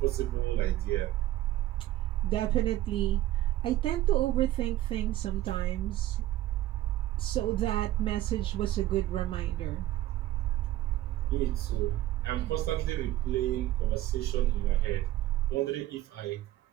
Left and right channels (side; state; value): left; quieter; 14.8 dB